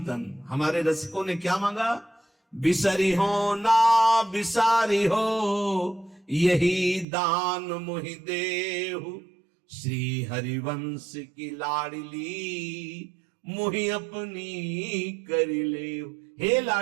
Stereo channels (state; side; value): drops out; left; at 7.1 s